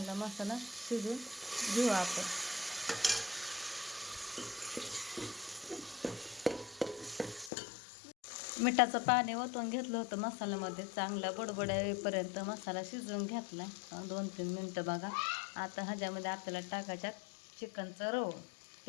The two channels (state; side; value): drops out; right; at 7.5 s